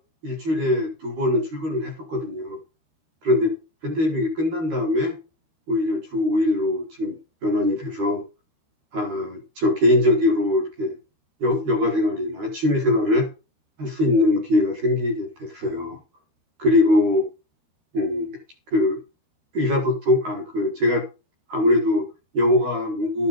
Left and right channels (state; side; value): late; left; 13 ms